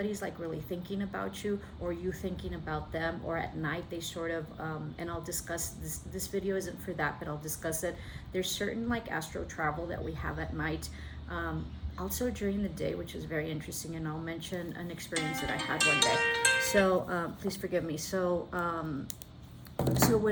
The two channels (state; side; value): identical; both; correlation 1.00